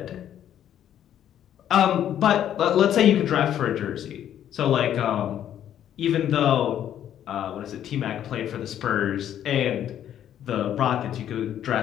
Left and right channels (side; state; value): right; quieter; 10.5 dB